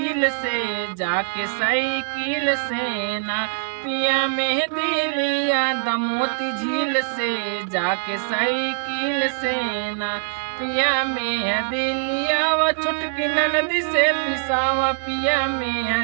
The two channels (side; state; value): left; silent; digital silence